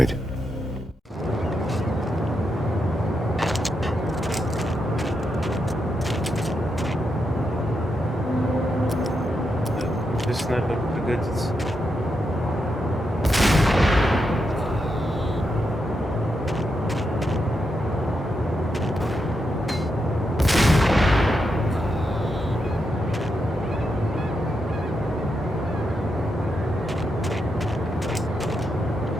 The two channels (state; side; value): normal; both; correlation 0.84